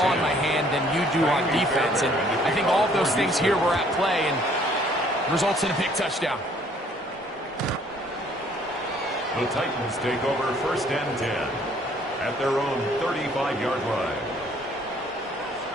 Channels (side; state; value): both; normal; correlation 0.60